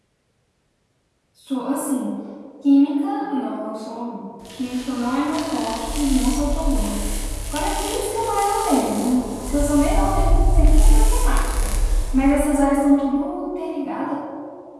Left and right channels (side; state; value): both; identical; correlation 1.00